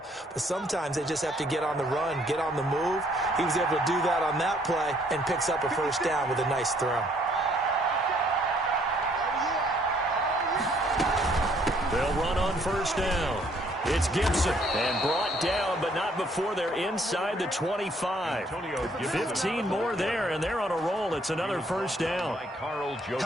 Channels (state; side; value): normal; both; correlation 0.65